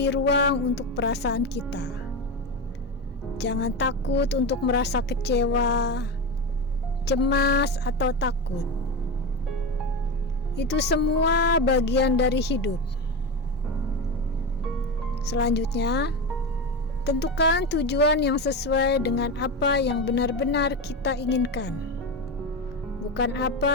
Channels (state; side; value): normal; both; correlation 0.18